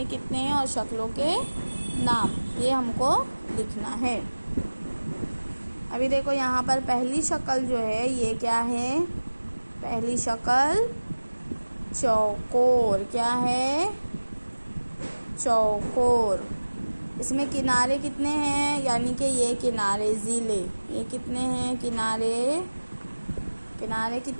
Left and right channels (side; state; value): both; inverted; correlation -1.00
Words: कितने हैं और शक्लों के नाम, ये हमको लिखना है। अभी देखो यहाँ पर पहली शक्ल जो है ये क्या है, पहली शक्ल चौकोर। क्या है, चौकोर। इसमें किनारे कितने हैं, यानी कि ये किनारे ज़िले, ये कितने हैं किनारे, किनारे